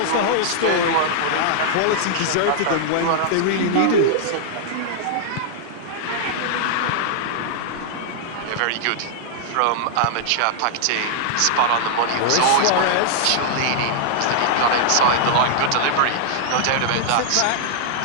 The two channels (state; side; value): different; both; correlation -0.01